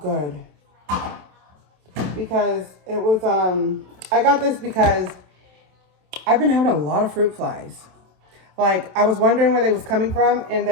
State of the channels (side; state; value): left; late; 27 ms